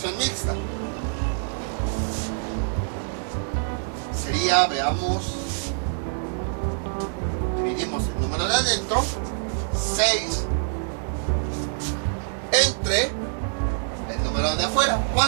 mixta. Sería, veamos, dividimos el número de adentro, 6, entre el número de afuera,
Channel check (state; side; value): silent; left; digital silence